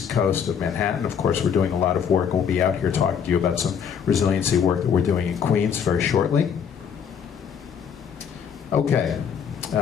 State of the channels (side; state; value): right; quieter; 7.5 dB